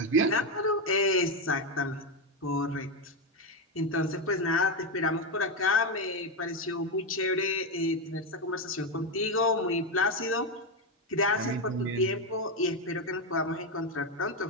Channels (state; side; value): normal; both; correlation 0.09